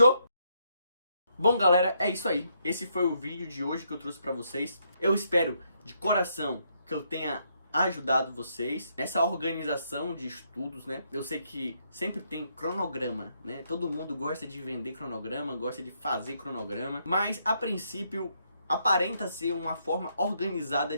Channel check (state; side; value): inverted; both; correlation -0.75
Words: Bom, galera, é isso aí. Esse foi o vídeo de hoje que eu trouxe pra vocês. Eu espero de coração que eu tenha ajudado vocês nessa organização de estudos, né? Eu sei que sempre tem cronograma, né? Todo mundo gosta de vender cronograma, gosta de fazer cronograma, mas a princípio aparenta ser uma forma organizada